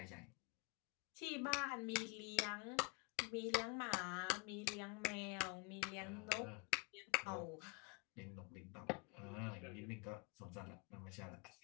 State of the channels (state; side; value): quieter; right; 29.2 dB